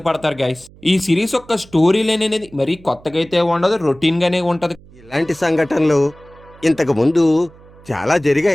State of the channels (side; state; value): right; noise; hum, 24 dB below the sound